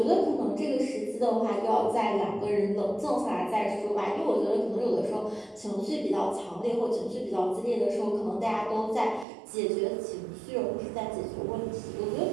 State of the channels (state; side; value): drops out; left; at 9.2 s